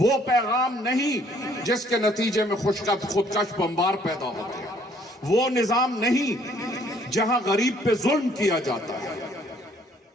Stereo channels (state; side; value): normal; both; correlation 0.63